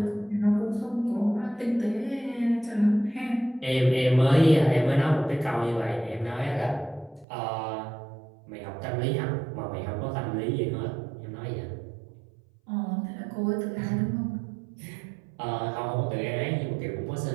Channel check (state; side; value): drops out; left; at 7.2 s